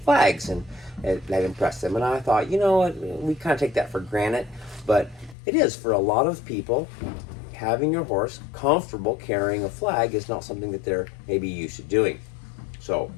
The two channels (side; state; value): right; drops out; at 5.4 s